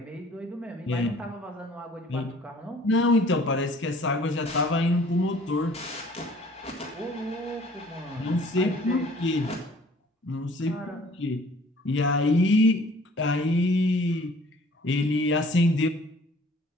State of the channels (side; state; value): both; normal; correlation 0.54